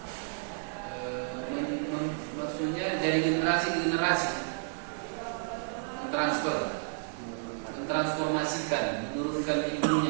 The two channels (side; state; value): left; silent; digital silence